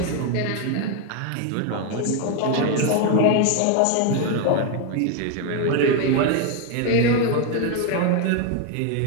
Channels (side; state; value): both; different; correlation 0.01